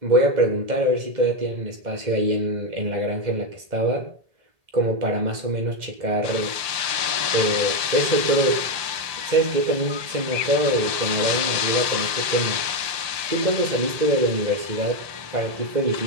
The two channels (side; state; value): left; late; 1.8 ms